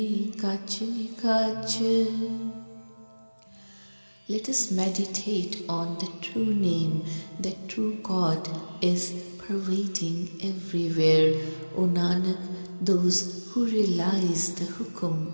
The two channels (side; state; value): both; inverted; correlation -1.00